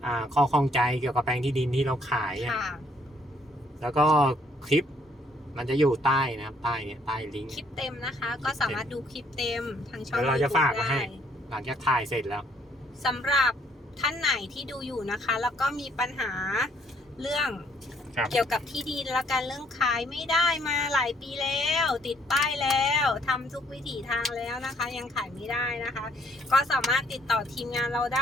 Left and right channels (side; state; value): both; normal; correlation 0.66